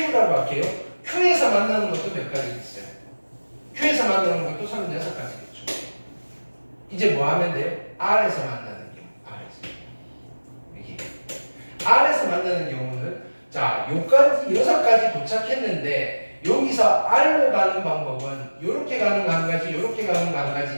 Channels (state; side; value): inverted; both; correlation -1.00